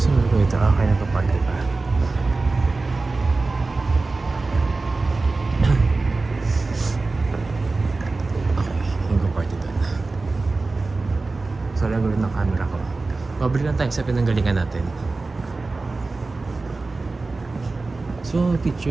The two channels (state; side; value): quieter; left; 3.6 dB